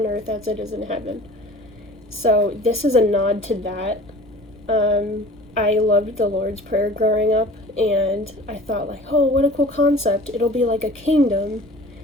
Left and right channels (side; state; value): both; normal; correlation 0.44